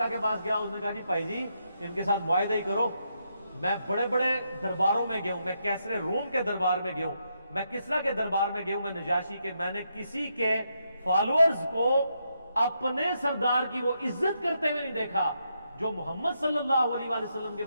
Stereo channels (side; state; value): both; inverted; correlation -0.80